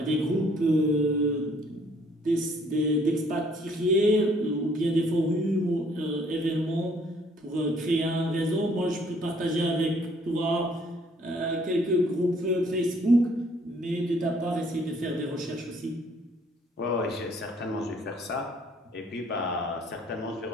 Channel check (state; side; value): normal; both; correlation 0.62